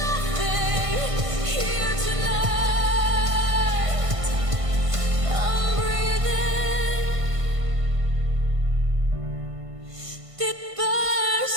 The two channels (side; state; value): left; late; 1.5 ms